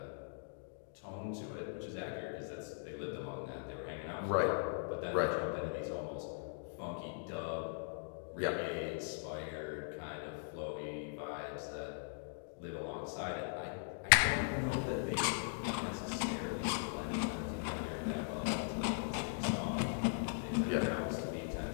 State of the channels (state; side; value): silent; right; digital silence